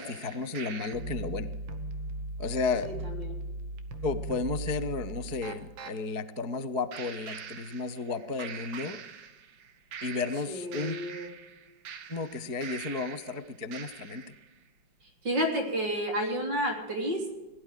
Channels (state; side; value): late; left; 4.7 ms